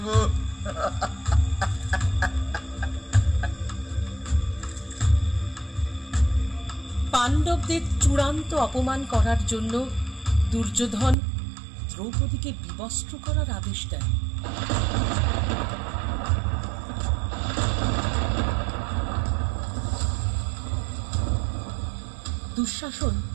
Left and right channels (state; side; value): drops out; left; at 11.2 s